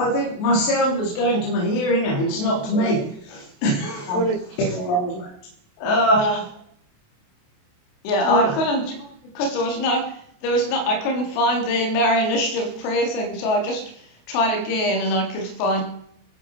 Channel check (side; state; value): right; late; 28 ms